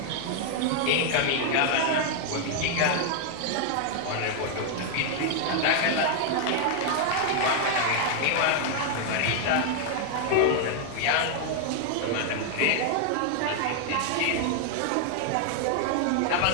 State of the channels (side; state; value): both; different; correlation 0.00